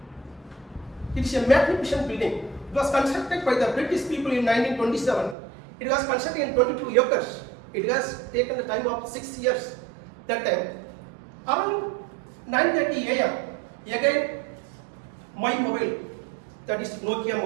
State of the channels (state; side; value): drops out; left; at 5.4 s